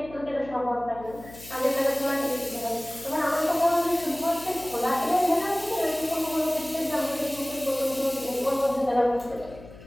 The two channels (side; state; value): left; noise; hum, 18 dB below the sound